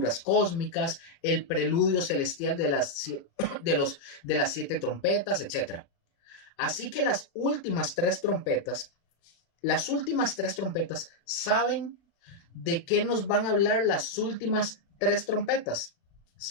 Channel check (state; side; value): late; right; 36 ms